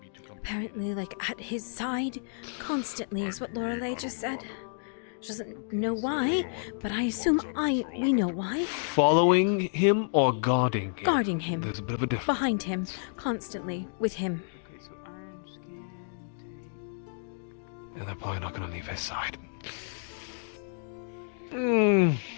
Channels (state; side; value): silent; right; digital silence